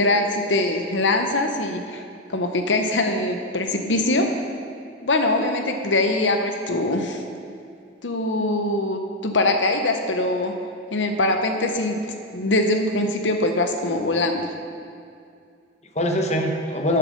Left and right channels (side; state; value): both; normal; correlation 0.02